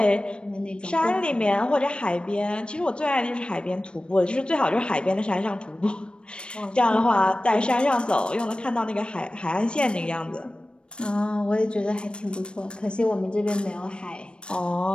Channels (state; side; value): late; right; 0.056 ms